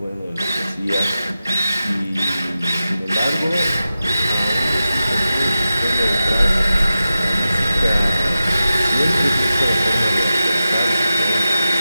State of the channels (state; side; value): inverted; both; correlation -0.93